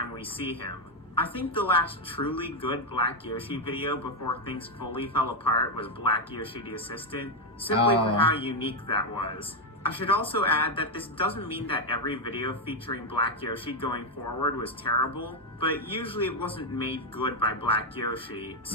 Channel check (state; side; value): normal; both; correlation 0.04